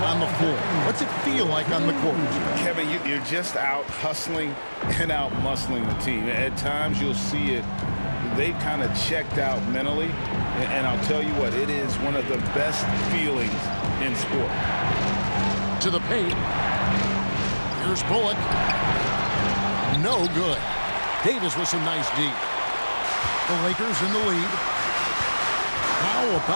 on the floor? What's it feel like on the court? Kevin, you're just out hustling and out muscling the team. At times you'll see it. They've kind of checked out mentally, and I'll tell you what, it is one of the best feelings in sport. To the paint. Here's Bullock. No good. Davis with some nice D. The Lakers in the lead. How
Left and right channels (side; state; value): both; inverted; correlation -1.00